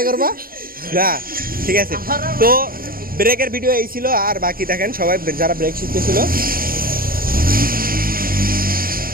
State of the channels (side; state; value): left; late; 0.42 ms